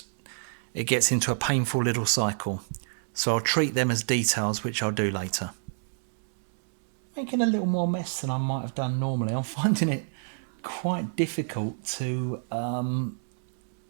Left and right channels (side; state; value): left; silent; digital silence